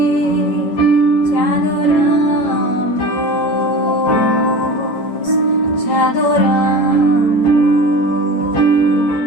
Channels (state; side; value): late; right; 8.2 ms